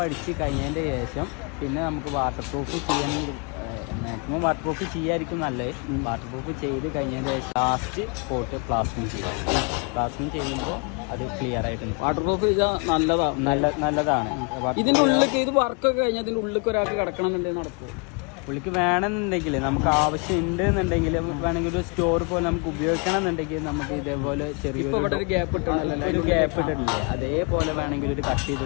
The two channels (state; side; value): quieter; right; 34.0 dB